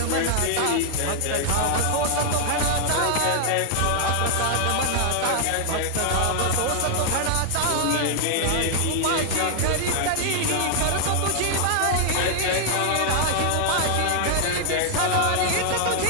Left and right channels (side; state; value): both; different; correlation 0.00